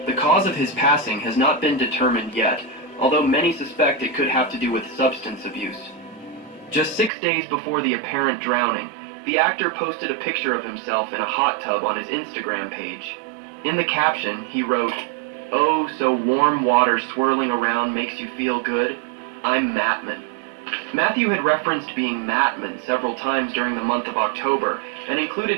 The cause of his passing has not been determined yet, although many suspect it could have to do with substance abuse. Just 6 days before the apparent drowning, the actor posted a picture of himself in a hot tub on his Instagram page. In the caption, he wrote, "Oh, so warm water swirling around makes you feel good? I'm Mattman." Matthew had referenced being Mattman several times during the month of October and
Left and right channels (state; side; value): drops out; left; at 7.1 s